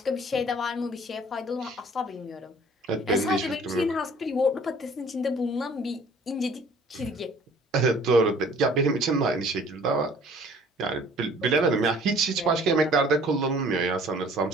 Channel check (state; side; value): normal; both; correlation 0.53